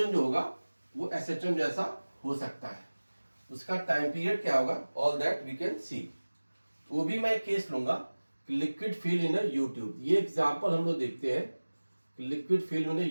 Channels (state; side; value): inverted; both; correlation -1.00